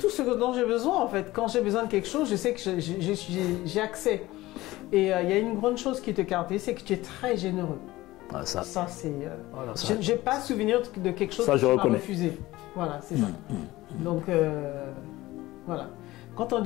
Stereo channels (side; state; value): right; quieter; 18.0 dB